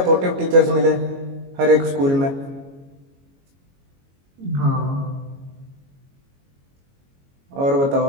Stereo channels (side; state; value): left; late; 22 ms